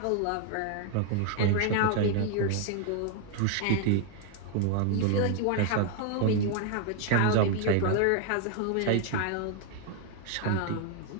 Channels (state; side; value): different; both; correlation 0.00